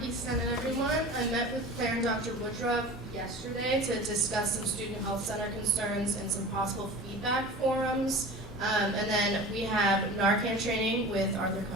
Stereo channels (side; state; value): both; normal; correlation 0.37